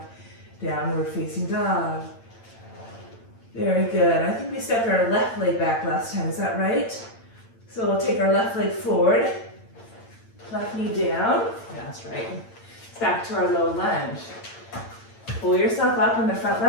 downward facing dog. Very good. I think we stepped our left leg back last time, is that right? So we'll take our left leg forward, left knee down, that's right. It's back to our low lunge. Pull yourself up on the front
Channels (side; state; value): right; late; 8.8 ms